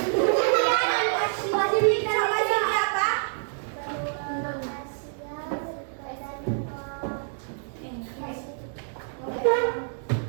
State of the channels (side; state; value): left; silent; digital silence